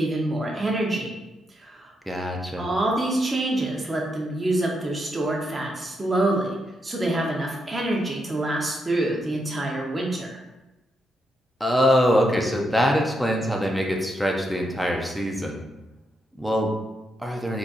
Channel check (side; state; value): both; normal; correlation 0.81